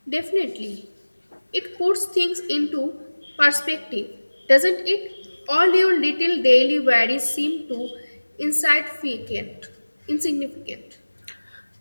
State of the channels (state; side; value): inverted; both; correlation -1.00